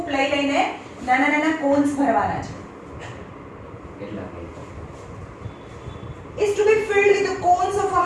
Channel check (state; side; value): identical; both; correlation 1.00